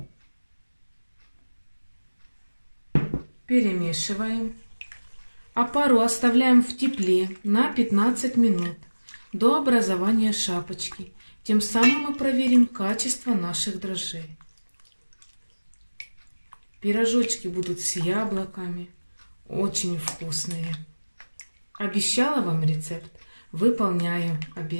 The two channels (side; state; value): both; inverted; correlation -1.00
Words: Перемешиваем. Опару оставляем в тепле на 15 минут до образования шапочки. Тем самым мы проверим качество наших дрожжей. Пирожочки будут с яблоками. Очень вкусные. Обещала вам рецепт, выполняю